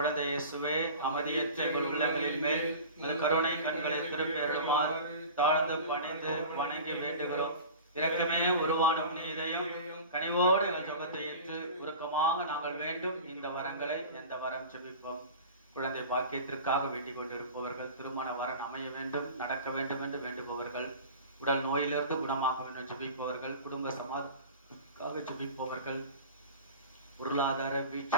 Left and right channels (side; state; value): both; inverted; correlation -0.37